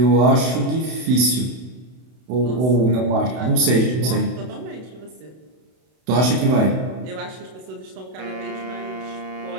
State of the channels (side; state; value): left; late; 32 ms